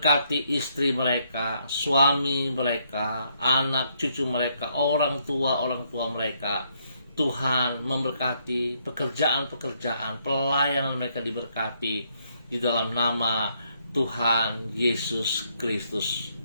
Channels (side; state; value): both; inverted; correlation -0.72